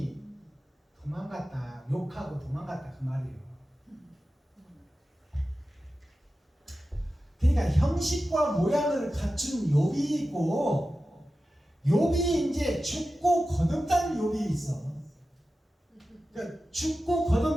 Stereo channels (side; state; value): both; normal; correlation 0.93